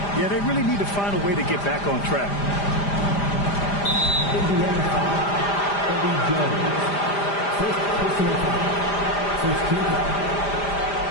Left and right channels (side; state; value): right; late; 5.0 ms